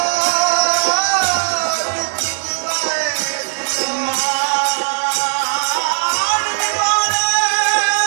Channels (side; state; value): left; silent; 68 dB below the other